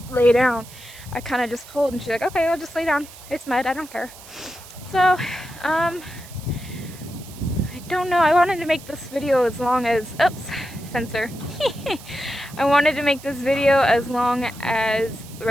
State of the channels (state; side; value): noise; right; hiss, 18 dB below the sound